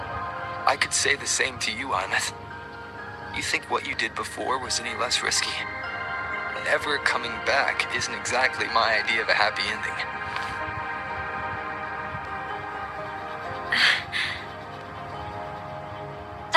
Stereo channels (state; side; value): identical; both; correlation 1.00